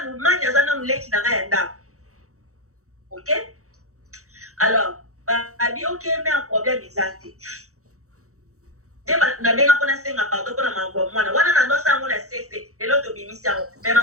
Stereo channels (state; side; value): late; left; 0.65 ms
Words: lumanya zana muleki na ya nda OK alors abi OK mais un problème exact na benga pona senga pardon pona mambo mwana wana na ndosa ngona sese lelo to bimisa mais